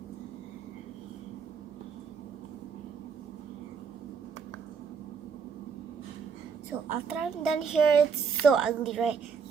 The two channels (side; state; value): left; quieter; 6.1 dB